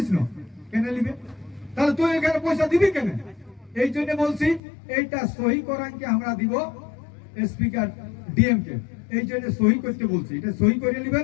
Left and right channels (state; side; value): drops out; right; at 4.6 s